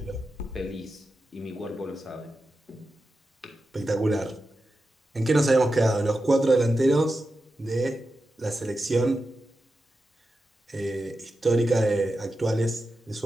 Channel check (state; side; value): normal; both; correlation 0.91